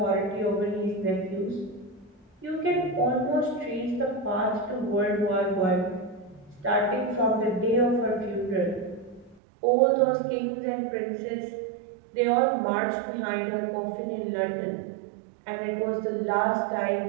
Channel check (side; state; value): left; drops out; at 9.4 s